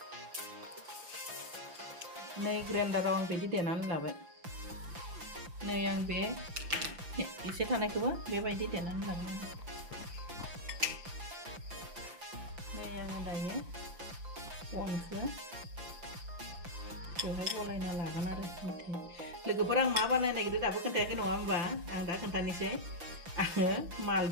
नै ग्राइन्डाराव आं बिदि देनानै लाबाय नै आं बे एसे थानायखौबो बेबायदि देनानै लागोन नै आङो दायो अनखौ बेवहाय गलायना लागोन आरो मिथाइ लोगोफोर आं मा बानायनो नागिरदों दाबो खोन्थायाखै नङा होमबा आं दा खोन्थानोसै आङो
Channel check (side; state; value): left; late; 5.8 ms